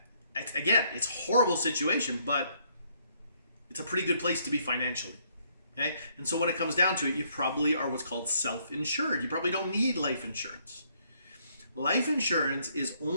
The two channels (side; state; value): both; inverted; correlation -0.69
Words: again, it's a horrible situation, but it's a pretty good place to be financially. Okay? And so when it comes down to it, you probably are what's called self-insured. You probably don't need life insurance. Life insurance is